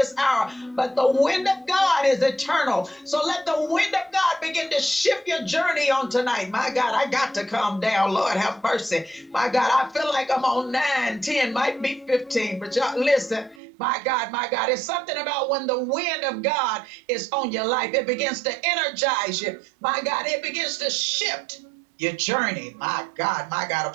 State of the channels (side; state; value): left; drops out; at 13.6 s